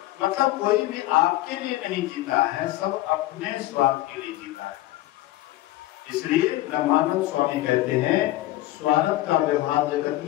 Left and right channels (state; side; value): quieter; right; 16.5 dB